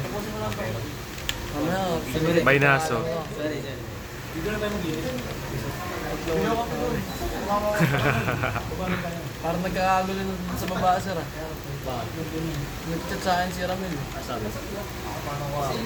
Baynaso. Parang nagkakagulo nun sa baba, sir. Nag-chat sa akin si Ramil. Sabi.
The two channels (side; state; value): both; identical; correlation 1.00